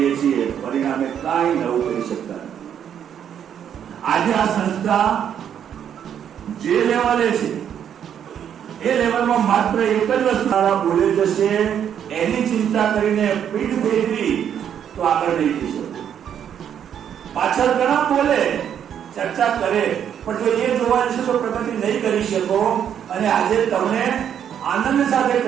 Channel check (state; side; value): quieter; left; 9.0 dB